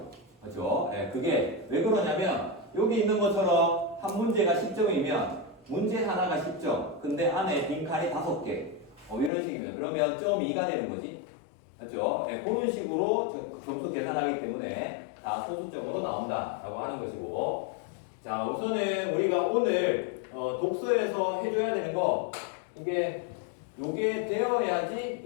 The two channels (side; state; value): right; drops out; at 9.3 s